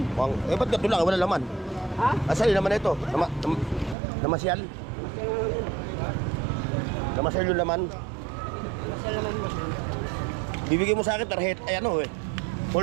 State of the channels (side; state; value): left; drops out; at 4.0 s